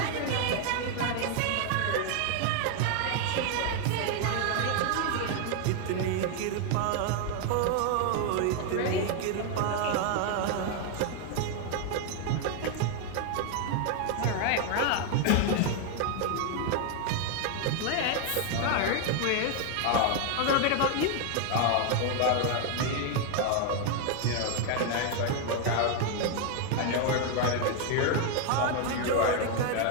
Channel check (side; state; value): both; different; correlation 0.01